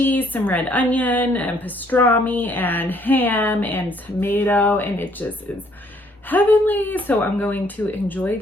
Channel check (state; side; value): normal; both; correlation 0.65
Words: some red onion, and pastrami, and ham, and tomato, and it just is heavenly. So I'm going to enjoy